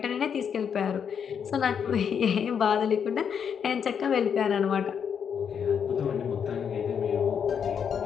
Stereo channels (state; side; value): quieter; right; 7.4 dB